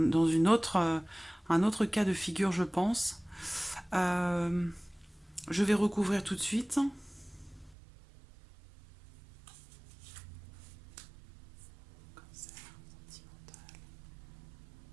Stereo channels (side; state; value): left; drops out; at 7.8 s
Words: autre cas de figure, je pense. Je vais recouvrir tout de suite.